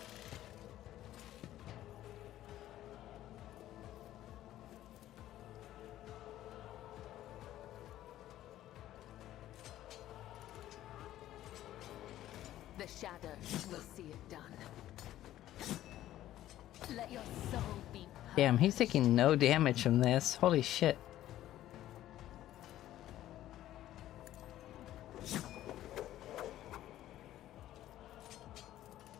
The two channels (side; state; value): right; quieter; 13.5 dB